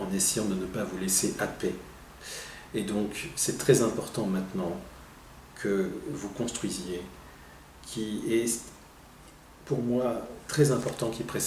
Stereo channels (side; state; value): both; identical; correlation 1.00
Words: essayant de ne pas vous laisser happer. Et donc, c'est très important maintenant que vous construisiez, qui est pour moi très important, qui